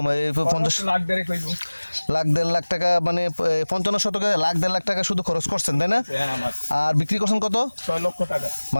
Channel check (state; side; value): inverted; both; correlation -1.00